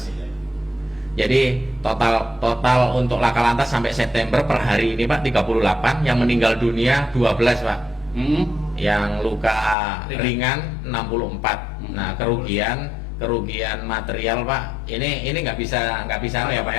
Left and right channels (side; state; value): right; drops out; at 9.8 s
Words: Jadi total untuk laka lantas sampai September per hari ini Pak 38, yang meninggal dunia 12 Pak. Yang luka ringan 64. Nah, kerugian material Pak, ini nggak bisa ya Pak